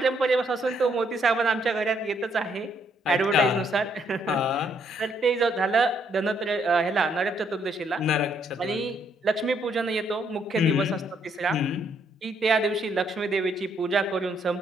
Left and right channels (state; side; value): normal; both; correlation 0.71